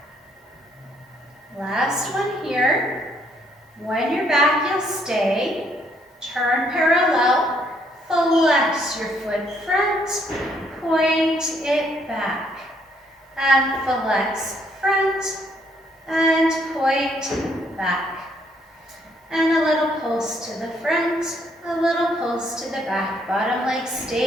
Last one here. When you're back, you'll stay. Turn parallel, flex your foot front, point it back, and flex front, and point back. And a little pulse to the front, a little pulse to the back. Bottom leg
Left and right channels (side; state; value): both; normal; correlation 0.69